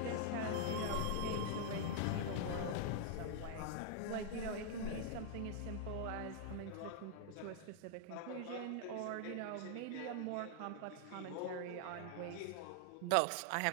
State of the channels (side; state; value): both; different; correlation 0.00